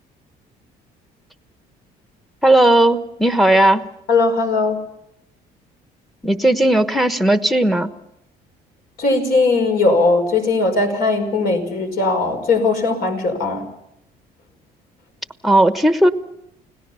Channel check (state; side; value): normal; both; correlation 0.72